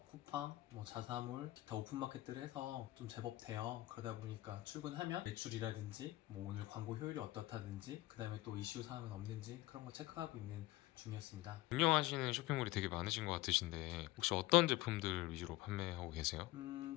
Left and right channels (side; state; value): right; quieter; 18.0 dB